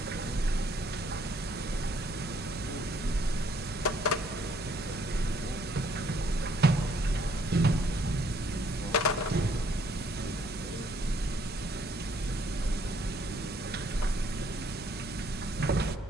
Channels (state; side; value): normal; both; correlation 0.65